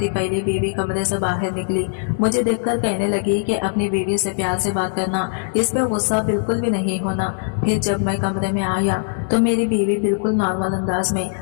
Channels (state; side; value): silent; right; 65 dB below the other